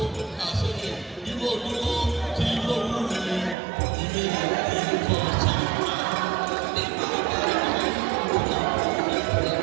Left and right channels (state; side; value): drops out; left; at 3.6 s